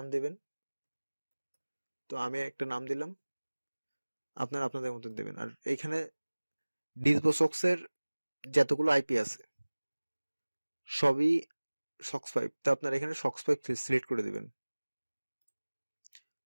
দিবেন। তো আমি একটা নাম দিলাম, আপনারা আপনাদের মতন দেবেন। আর এইখানে ডিসভোসক্সের যতগুলো আইপি আছে সবই সক্স 5। তো আপনারা এখানে সক্স 5 সিলেক্ট করে দিবেন।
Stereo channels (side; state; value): both; inverted; correlation -1.00